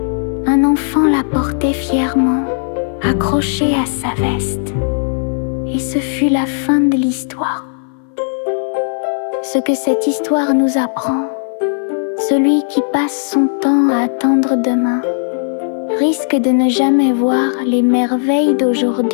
Un enfant la portait fièrement, accrochée à sa veste. Et ce fut la fin de l'histoire. Ce que cette histoire nous apprend, celui qui passe son temps à attendre demain risque de ne jamais voir les merveilles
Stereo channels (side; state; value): right; silent; 60 dB below the other